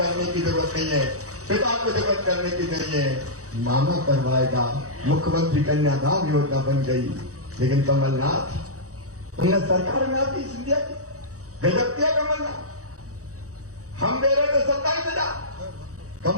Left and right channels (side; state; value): left; late; 0.65 ms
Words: की जरूरत नहीं है, पिता को जरूरत करने की नहीं है, मामा करवाएगा। मुख्यमंत्री कन्यादान योजना बन गई। लेकिन कमलनाथ, उन्हें सरकार में आती सिंधिया की गजब किया कमलनाथ, हम दे रहे थे 27,000,